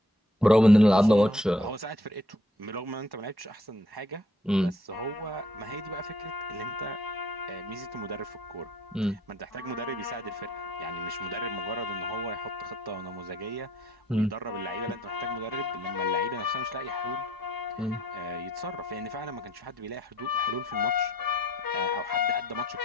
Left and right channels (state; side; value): normal; both; correlation 0.63